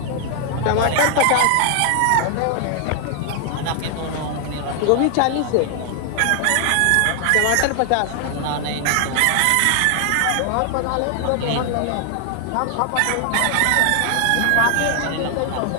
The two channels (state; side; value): different; both; correlation 0.00